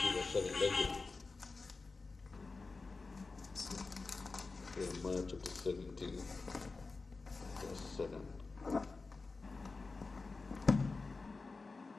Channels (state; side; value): quieter; right; 3.9 dB